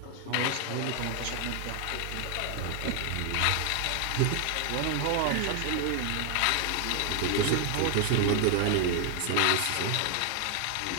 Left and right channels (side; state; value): both; different; correlation 0.00